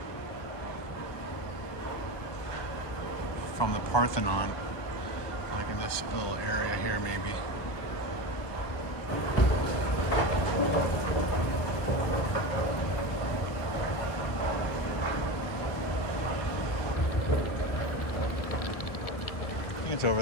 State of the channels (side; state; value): right; late; 1.2 ms